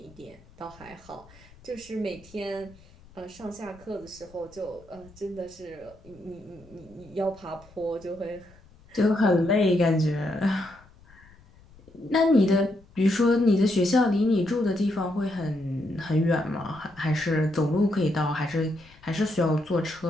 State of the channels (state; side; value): noise; left; rumble, 25 dB below the sound